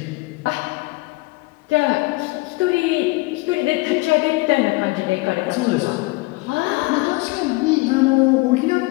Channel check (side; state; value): right; quieter; 23.3 dB